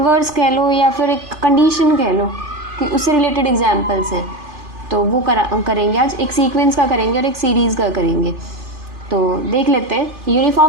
कह लो या फिर एक कंडीशन कह लो कि उससे रिलेटेड एग्जांपल्स हैं, तो वो करेंगे आज। एक सीक्वेंस का करेंगे और एक सीरीज़ का करेंगे। तो देख लेते हैं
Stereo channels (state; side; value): late; left; 2.5 ms